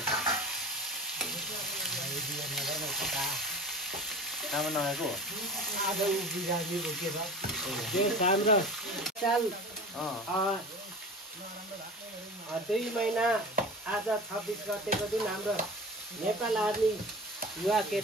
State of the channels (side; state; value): both; normal; correlation 0.36